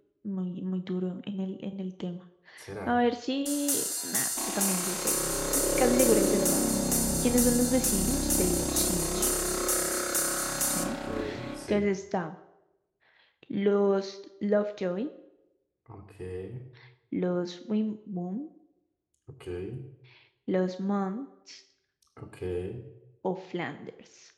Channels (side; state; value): both; identical; correlation 1.00